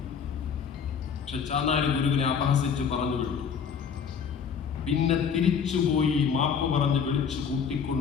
പക്ഷെ ചാന്നാർ ഗുരുവിനെ അപഹസിച്ച് പറഞ്ഞു വിട്ടു. പിന്നെ തിരിച്ചുപോയി മാപ്പ് പറഞ്ഞ് വിളിച്ചു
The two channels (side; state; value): right; quieter; 6.8 dB